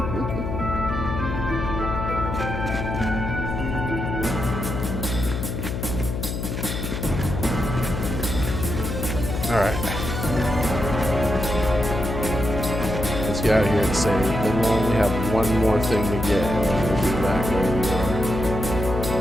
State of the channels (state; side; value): noise; left; hum, 4 dB below the sound